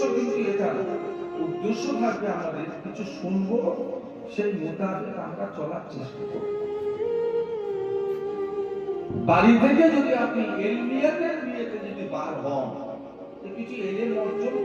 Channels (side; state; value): both; identical; correlation 1.00